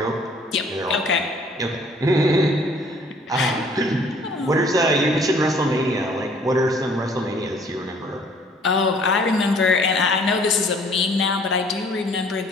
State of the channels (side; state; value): both; normal; correlation 0.57